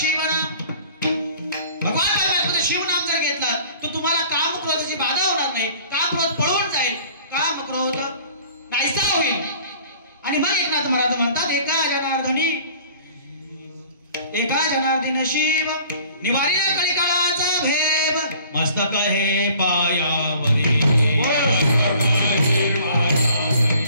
भगवान परमात्म्याचं शिव नाम जर घेतला तर तुम्हाला काम क्रोधाची बाधा होणार नाही, काम क्रोध पळून जाईल, काम क्रोध नाहीसा होईल. आणि मग एकनाथ महाराज म्हणतात एका जनार्दन शिव निवारिला कलिकाळाचा भेव, मस्तक हे पायावरी,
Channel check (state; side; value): inverted; both; correlation -0.50